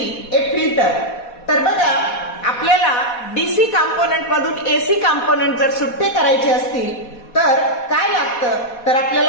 a filter. तर बघा, आपल्याला DC component मधून AC component जर सुट्टे करायचे असतील तर काय लागतं, तर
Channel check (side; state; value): right; late; 4.2 ms